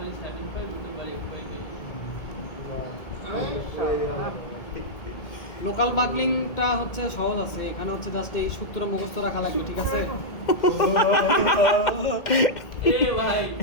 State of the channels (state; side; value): late; right; 1.8 ms